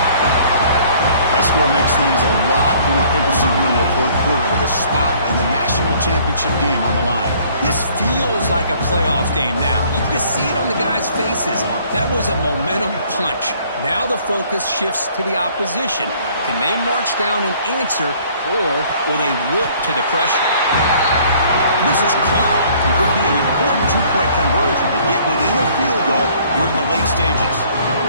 That score makes things a lot more interesting here in the fourth quarter with a spot in the national championship game on the line. This feels like a playoff game now. You can just see it on the guys' faces. That was a momentum punch. Now the focus shifts to the opposition. Can they march down and answer, or will they look to the pressure? This is caught. It would be an important two-point conversion to get within a field goal here in the late stages.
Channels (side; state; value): both; inverted; correlation -0.58